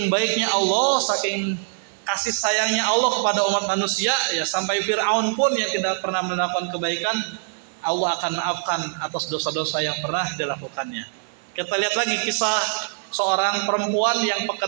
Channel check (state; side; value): silent; left; 56 dB below the other